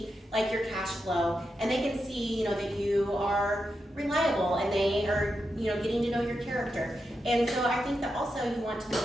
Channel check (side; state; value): both; normal; correlation 0.87